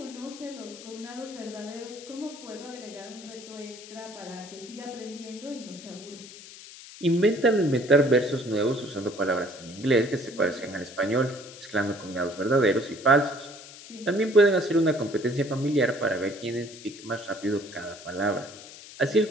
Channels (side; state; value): left; noise; hiss, 16 dB below the sound